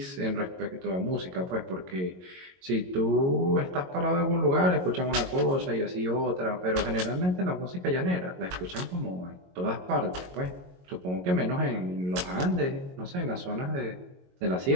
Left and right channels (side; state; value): left; late; 22 ms